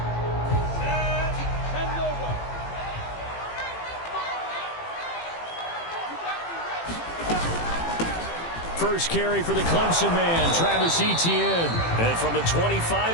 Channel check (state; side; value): late; right; 18 ms